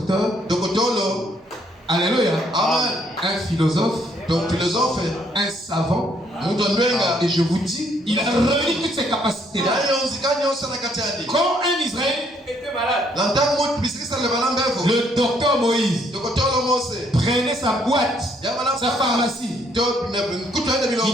alléluia, un philosophe, un savant, et je vous dis, il a réuni toutes ses capacités. Quand un Israélite était malade, le docteur Moïse prenait sa boîte, sa pharmacie. Il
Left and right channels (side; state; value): both; normal; correlation 0.68